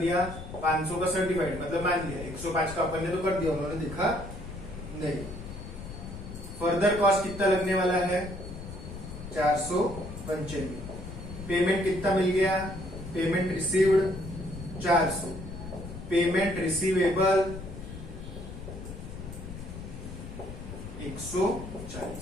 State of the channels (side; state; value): left; noise; rumble, 10 dB below the sound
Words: 500 का सर्टिफाइड, मतलब मान लिया 105 का अपन ने तो कर दिया, उन्होंने देखा नहीं। फर्दर कॉस्ट कितना लगने वाला है, 495। पेमेंट कितना मिल गया, पेमेंट रिसीव्ड 400, पेमेंट रिसीवेबल